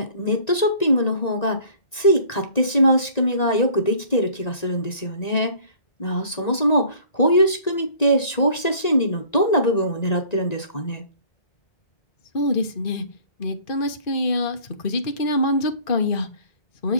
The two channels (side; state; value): right; late; 1.9 ms